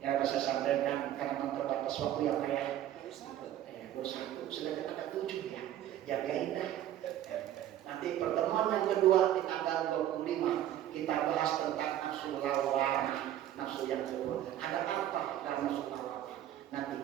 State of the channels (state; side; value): quieter; left; 12.0 dB